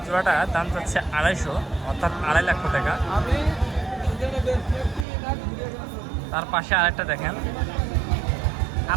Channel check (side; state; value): left; drops out; at 5.1 s